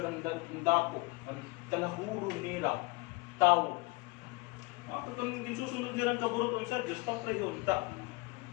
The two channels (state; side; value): quieter; right; 25.0 dB